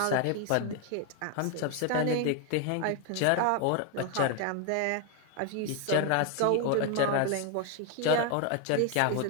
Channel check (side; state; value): both; different; correlation 0.01